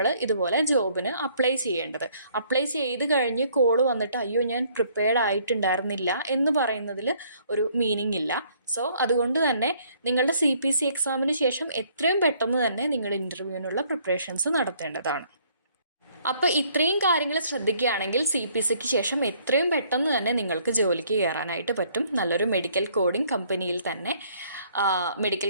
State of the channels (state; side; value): inverted; both; correlation -0.63